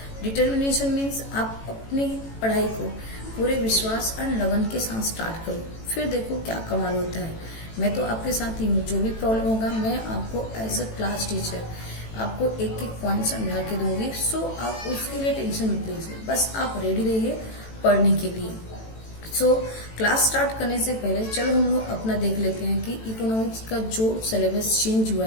डिटर्मिनेशन मीन्स आप अपनी पढ़ाई को पूरे विश्वास एंड लगन के साथ स्टार्ट करो, फिर देखो क्या कमाल होता है। मैं तो आपके साथ ही हूँ, जो भी प्रॉब्लम होगा मैं आपको एज अ क्लास टीचर आपको एक एक पॉइंट समझा के दूंगी। सो आप उसके लिए टेंशन मत लीजिए, बस आप रेडी रहिए पढ़ने के लिए। सो क्लास स्टार्ट करने से पहले चलो हम लोग अपना देख लेते हैं कि इकोनॉमिक्स का जो सिलेबस चेंज हुआ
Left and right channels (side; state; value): right; late; 18 ms